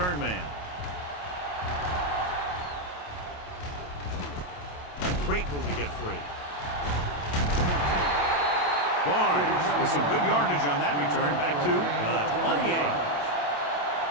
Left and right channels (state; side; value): late; right; 28 ms